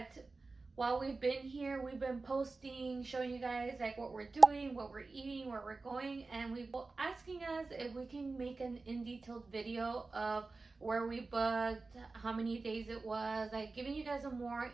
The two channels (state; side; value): quieter; left; 3.8 dB